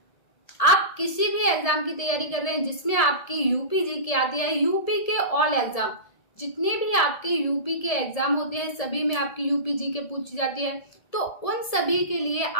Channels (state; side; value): late; right; 1.7 ms